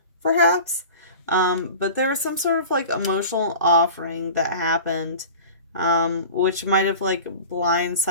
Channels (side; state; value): both; inverted; correlation -0.37